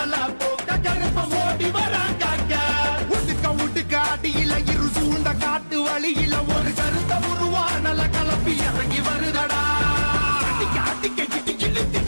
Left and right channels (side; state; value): both; inverted; correlation -1.00